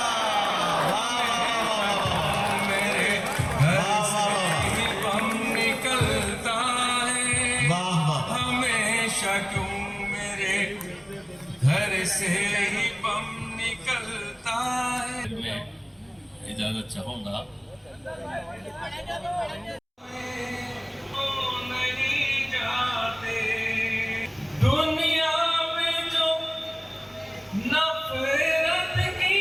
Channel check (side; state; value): both; identical; correlation 1.00